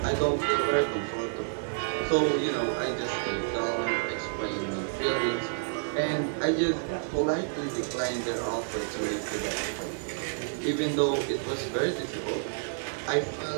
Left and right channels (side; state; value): left; silent; 58 dB below the other